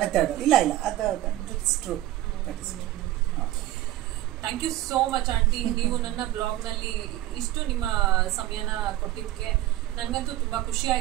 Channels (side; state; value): left; quieter; 15.0 dB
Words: ಇಲ್ಲ ಅದು true. Thank you so much aunty. ನೀವು ನನ್ನ ಬ್ಲಾಗ್ ನಲ್ಲಿ ಇಷ್ಟು ನಿಮ್ಮ ಸಮಯನ ಕೊಟ್ಟಿದ್ದಕ್ಕೆ ನನ್ಗಂತೂ ತುಂಬಾ ಖುಷಿ